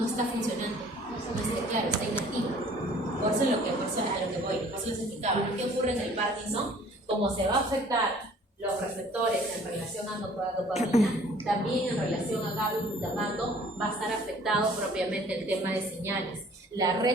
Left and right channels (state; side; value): normal; both; correlation 0.53